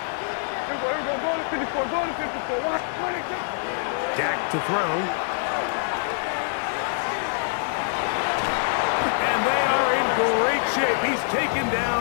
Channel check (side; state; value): right; silent; digital silence